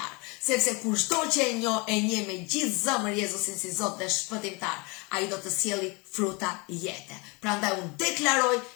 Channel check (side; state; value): right; quieter; 28.6 dB